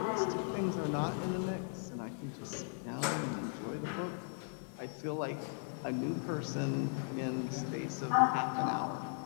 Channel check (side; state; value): right; silent; 53 dB below the other